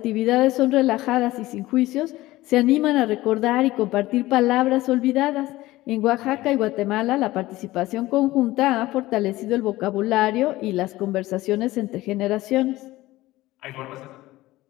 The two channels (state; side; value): quieter; right; 17.7 dB